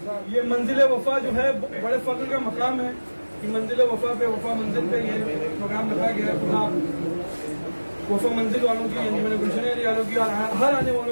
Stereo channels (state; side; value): inverted; both; correlation -1.00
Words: ये मंजिल वफा जो है बड़े फख्र का मकाम है कि मंजिल वफा पे वफा मंजिल पे ये प्रोग्राम रखा गया है। खुदा वफा मंजिल वालों की, अंजुमन गुलशन अली वालों की और हर आने